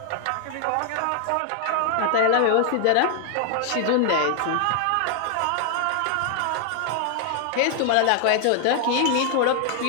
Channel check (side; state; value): both; different; correlation 0.00